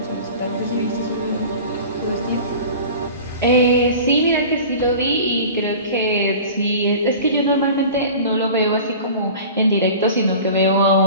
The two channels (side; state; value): both; inverted; correlation -0.39